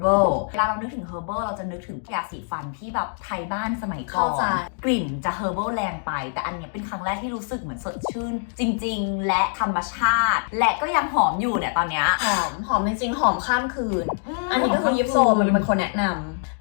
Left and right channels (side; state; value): right; silent; digital silence